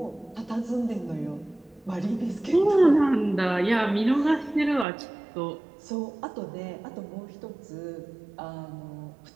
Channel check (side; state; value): left; drops out; at 4.9 s